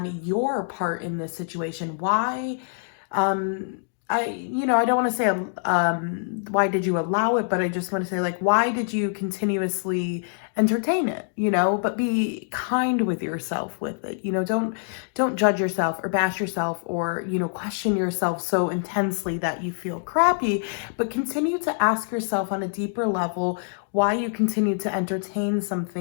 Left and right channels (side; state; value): right; silent; digital silence